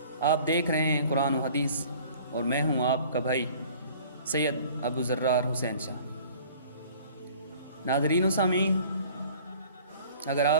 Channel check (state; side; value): inverted; both; correlation -0.50